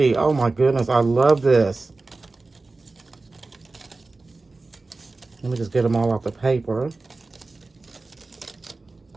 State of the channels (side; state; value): left; quieter; 3.5 dB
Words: Oh my goodness, I love this. Let me just get them all off the paper.